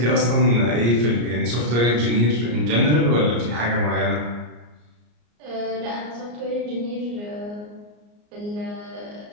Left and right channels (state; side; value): late; left; 34 ms